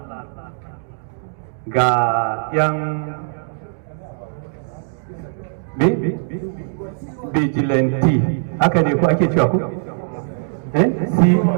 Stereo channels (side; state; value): left; silent; digital silence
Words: ga yan vigilante haka ne ko ake cewa ku?